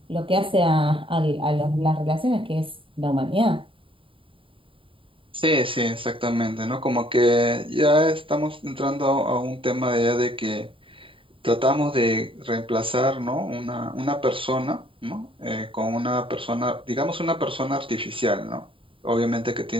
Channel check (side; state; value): left; late; 0.25 ms